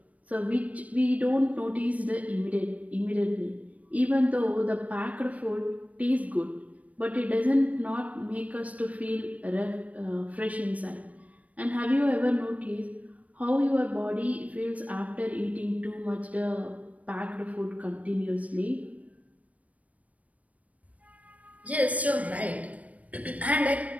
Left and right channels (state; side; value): late; left; 0.069 ms